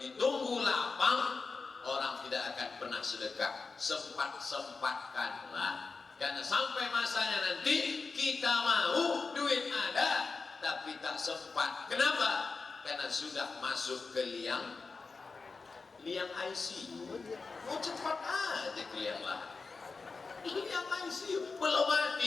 lapang, orang tidak akan pernah sedekah. Sempat-sempatkanlah, karena sampai masanya nanti kita mau duit ada tapi tak sempat. Kenapa? Karena sudah masuk ke liang ICU. Mau cepat aja ke liang lahat. Liang ICU belum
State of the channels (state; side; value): quieter; right; 4.3 dB